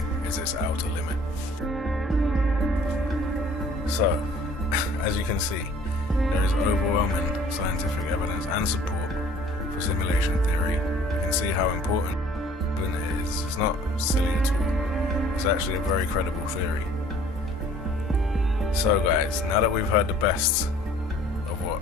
is its outer limit." So, as you can see, there is overwhelming scientific evidence and support for simulation theory. You can see how important it is. It's not silly at all. It's actually a very credible theory. So guys, now that we've heard the best of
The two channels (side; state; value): both; normal; correlation 0.53